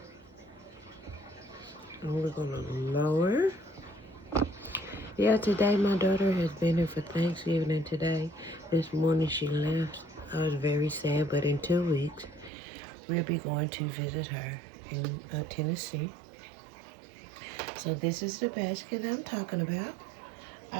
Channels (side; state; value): left; drops out; at 12.5 s